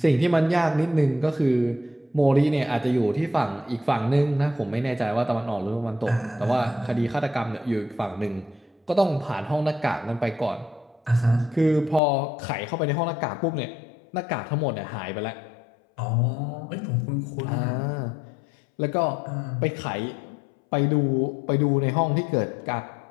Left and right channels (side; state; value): right; drops out; at 12.0 s